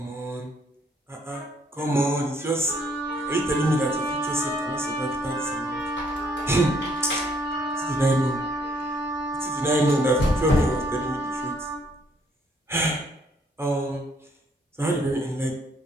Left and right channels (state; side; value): normal; both; correlation 0.67